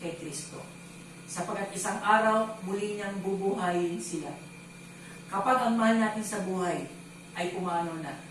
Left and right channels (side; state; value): both; identical; correlation 1.00